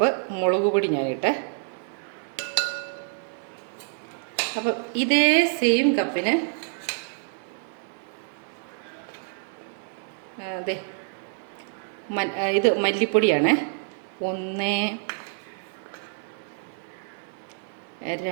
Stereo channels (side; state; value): left; silent; 60 dB below the other